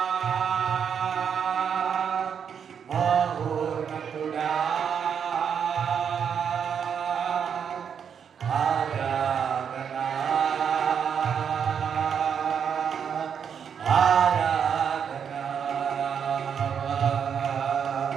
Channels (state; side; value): quieter; left; 7.5 dB